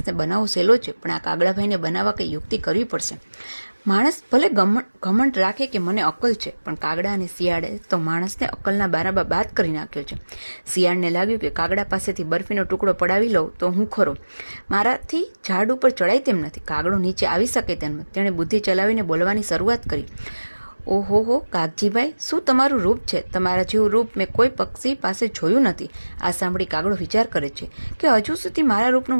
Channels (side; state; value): both; inverted; correlation -1.00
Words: બનાવવો સહેલો છે, પણ આ કાગડાભાઈને બનાવવા કંઈ યુક્તિ કરવી પડશે. માણસ ભલે ઘમંડ રાખે કે મને અક્કલ છે, પણ કાગડા અને શિયાળે તો માણસને અક્કલના બારામાં બાદ કરી નાખ્યો છે. શિયાળને લાગ્યું કે કાગડા પાસેથી બરફીનો ટુકડો પડાવી લઉં તો હું ખરો. મારાથી ઝાડ ઉપર ચડાય તેમ નથી. કાગડો નીચે આવી શકે તેમ નથી. તેણે બુદ્ધિ ચલાવીને બોલવાની શરૂઆત કરી. ઓહો કાગજીભાઈ, શું તમારું રૂપ છે! તમારા જેવું રૂપ મેં કોઈ પક્ષી પાસે જોયું નથી. આ સાંભળી કાગડો વિચાર કરે છે કે હજુ સુધી મારા